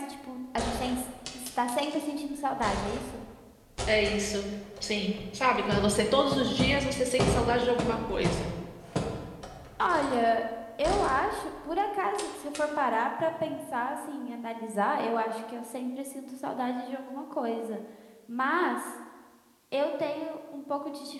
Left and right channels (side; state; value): both; identical; correlation 1.00